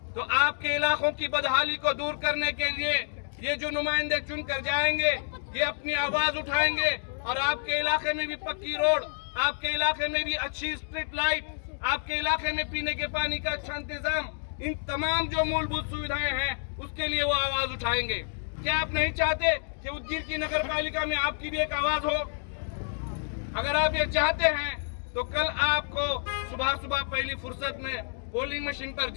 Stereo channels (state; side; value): silent; right; digital silence